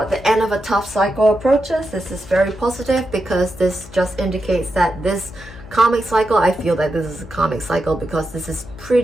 the end of a tough cycle approaches. This is very positive, because this just indicates that this Karmic cycle, I feel that this is a karmic cycle because this is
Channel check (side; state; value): left; noise; hum, 18 dB below the sound